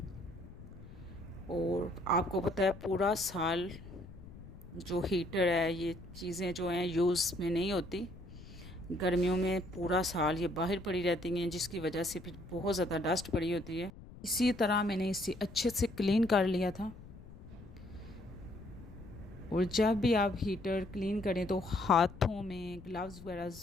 और आपको पता है पूरा साल जो हीटर है, ये चीज़ें जो हैं यूज़ में नहीं होती। गर्मियों में पूरा साल ये बाहर पड़ी रहती हैं, जिसकी वजह से फिर बहुत ज़्यादा डस्ट पड़ी होती है। इसी तरह मैंने इसे अच्छे से क्लीन कर लिया था। और जब भी आप हीटर क्लीन करें तो हाथों में ग्लव्स वगैरह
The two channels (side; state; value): left; noise; rumble, 17 dB below the sound